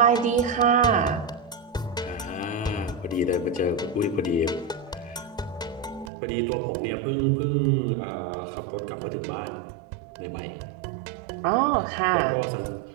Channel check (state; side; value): drops out; left; at 6.1 s